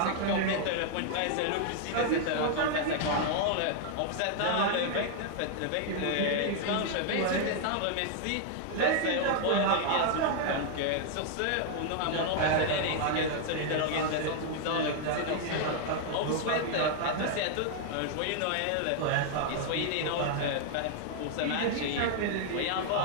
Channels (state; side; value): different; both; correlation 0.00